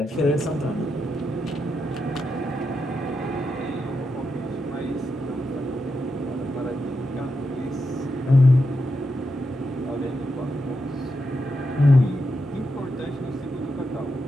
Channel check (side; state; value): both; normal; correlation 0.85